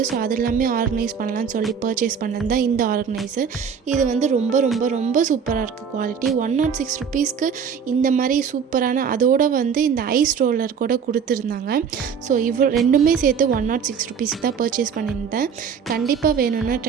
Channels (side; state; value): left; quieter; 6.8 dB